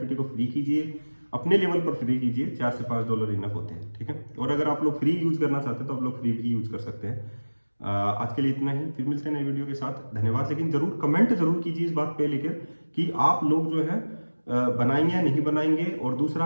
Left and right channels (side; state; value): both; inverted; correlation -1.00